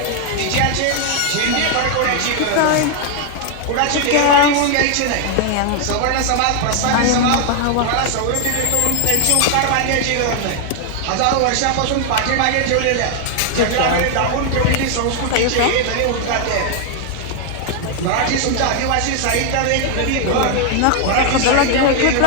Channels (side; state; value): both; different; correlation 0.00